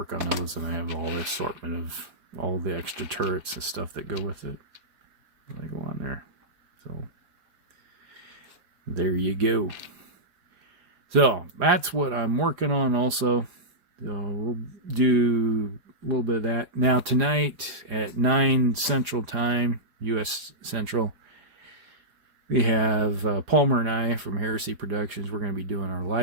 on those, and I have all the assortment of all the extra turrets and stuff that go with it. They go on there. So there you go. So that's what I'm working on also. So we'll do a little bit of that. Now tonight at 9 Central Time, U.S. Central, we have Palmer and I from Heresy Productions. We're going to be doing our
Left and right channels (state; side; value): late; left; 5.0 ms